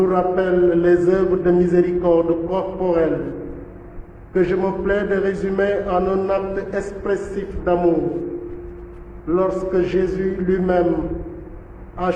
rappellent les œuvres de miséricorde corporelle que je me plais de résumer en un acte expressif d'amour lorsque Jésus lui-même a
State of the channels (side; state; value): both; identical; correlation 1.00